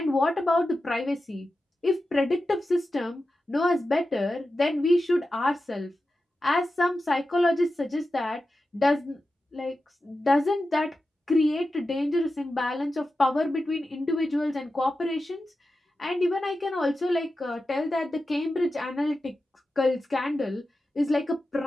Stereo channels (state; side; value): normal; both; correlation 0.92